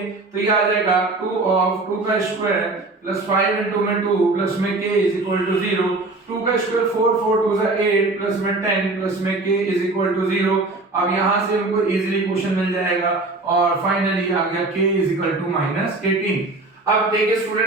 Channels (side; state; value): left; quieter; 3.2 dB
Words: तो ये आ जाएगा 2 ऑफ 2 का स्क्वायर प्लस 5 into में 2 प्लस में k इज इक्वल टू 0। 2 का स्क्वायर 4 4 2 8 प्लस में 10 प्लस में k इज इक्वल टू 0। अब यहां से हमको इजीली क्वेश्चन मिल जाएगा और फाइनली आ गया k इज इक्वल टू -18। अब देखिए